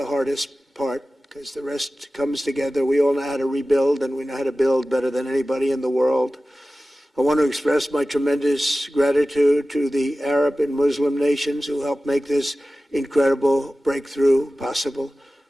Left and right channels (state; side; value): normal; both; correlation 0.96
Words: hardest part, because the rest comes together. We all know how to rebuild, and we know how to build better than anybody in the world. I want to express my tremendous gratitude to the Arab and Muslim nations who helped make this incredible breakthrough possible.